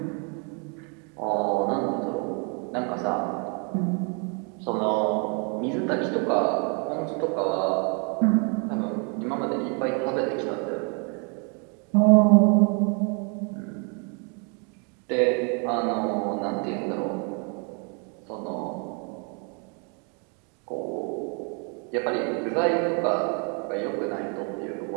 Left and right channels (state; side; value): quieter; left; 36.9 dB